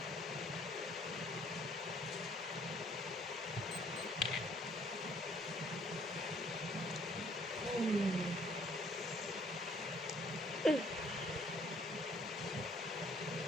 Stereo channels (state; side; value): normal; both; correlation 0.62